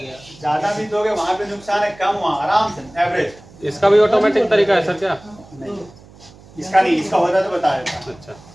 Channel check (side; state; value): right; noise; hum, 23 dB below the sound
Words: ज्यादा भी दोगे वहाँ पे नुकसान है, कम वहाँ आराम से एवरेज। इसका भी ऑटोमेटिक तरीका है सर क्या? इसका नहीं, इसका होता तो बता देता। अच्छा।